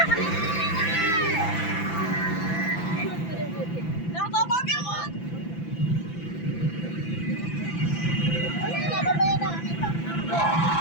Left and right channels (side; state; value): right; late; 5.9 ms